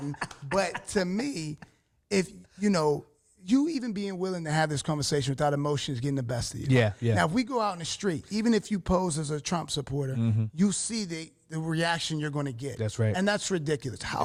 But to me, if, you even being willing to have this conversation without emotions getting the best of you. Yeah. Now, if we go out in the street, even if you pose as a Trump supporter, you see the reaction you're going to get. That's right. And that's ridiculous.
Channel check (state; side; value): identical; both; correlation 1.00